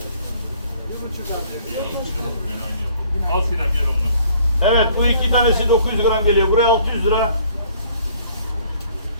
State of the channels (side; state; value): both; inverted; correlation -0.57